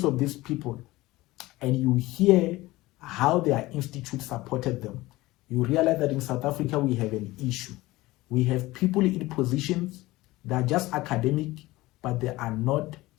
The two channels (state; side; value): quieter; right; 19.1 dB